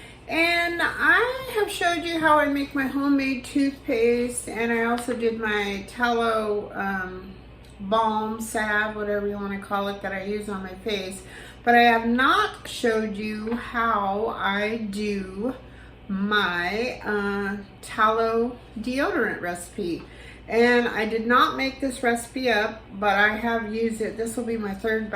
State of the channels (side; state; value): both; identical; correlation 1.00